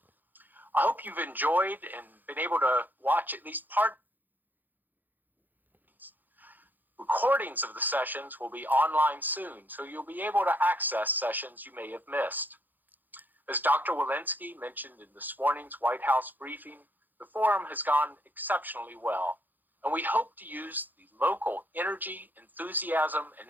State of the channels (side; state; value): left; late; 0.087 ms